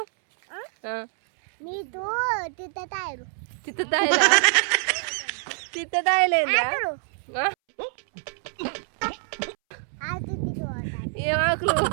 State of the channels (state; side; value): silent; left; 61 dB below the other